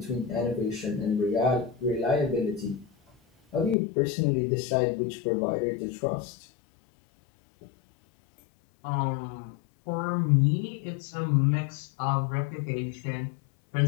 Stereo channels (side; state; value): right; drops out; at 3.8 s